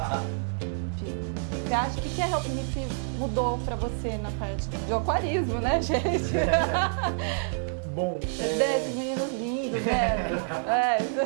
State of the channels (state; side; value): silent; left; digital silence